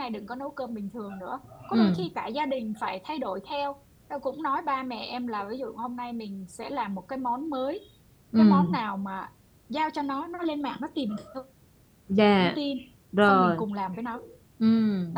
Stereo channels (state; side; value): identical; both; correlation 1.00